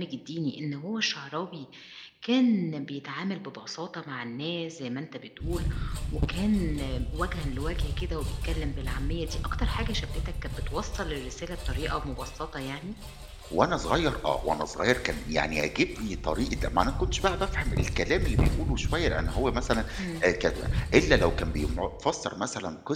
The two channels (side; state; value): both; identical; correlation 1.00